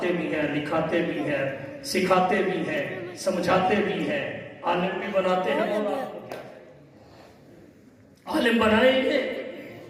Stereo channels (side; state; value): both; identical; correlation 1.00